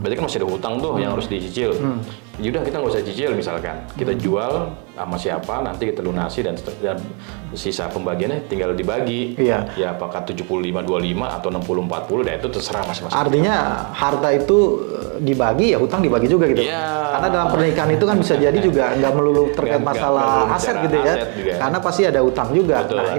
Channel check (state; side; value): quieter; left; 37.1 dB